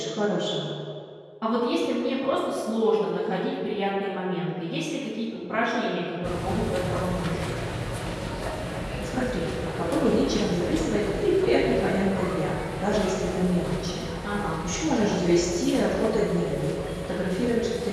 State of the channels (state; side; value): identical; both; correlation 1.00